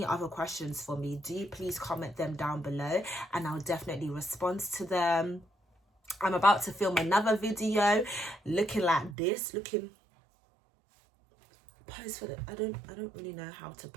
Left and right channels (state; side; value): drops out; left; at 9.2 s